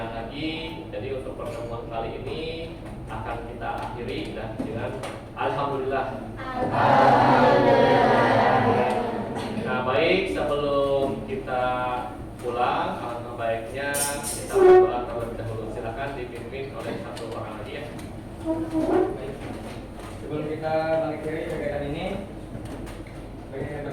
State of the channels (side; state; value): both; identical; correlation 1.00